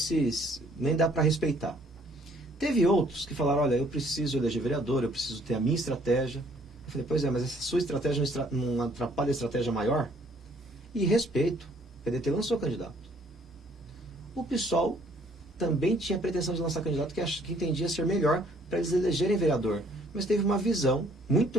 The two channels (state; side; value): normal; both; correlation 0.62